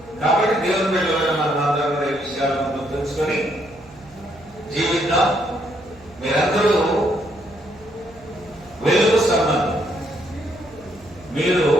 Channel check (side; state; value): right; noise; hum, 24 dB below the sound